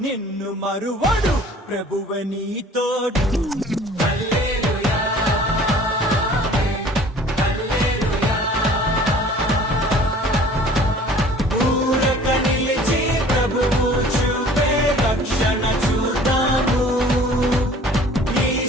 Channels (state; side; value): normal; both; correlation 0.49